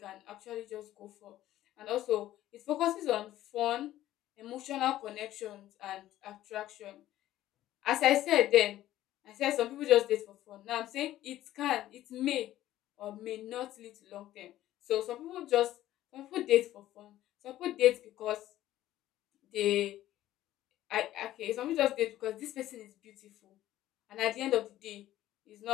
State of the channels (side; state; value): right; quieter; 13.9 dB